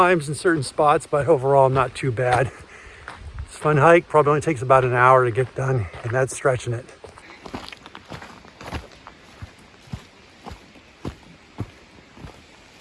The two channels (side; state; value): both; identical; correlation 1.00